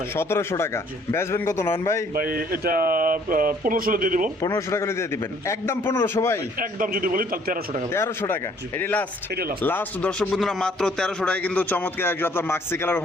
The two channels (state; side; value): normal; both; correlation 0.61